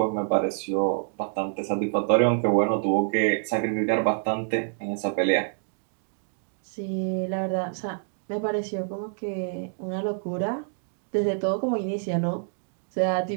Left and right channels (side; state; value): left; silent; digital silence